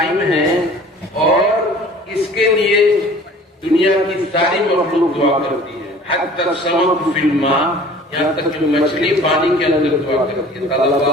ہے، اور اس کے لیے دنیا کی ساری مخلوق دعا کرتی ہے، حتی السمک فی الماء، یہاں تک کہ مچھلی پانی کے اندر دعا کرتی ہے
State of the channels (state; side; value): normal; both; correlation 0.47